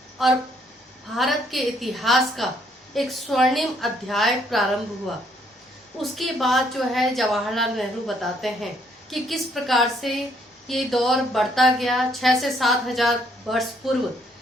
और भारत के इतिहास का एक स्वर्णिम अध्याय प्रारंभ हुआ। उसके बाद जो है जवाहरलाल नेहरू बताते हैं कि किस प्रकार से ये दौर बढ़ता गया। 6 से 7 हजार वर्ष पूर्व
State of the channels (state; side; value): normal; both; correlation 0.68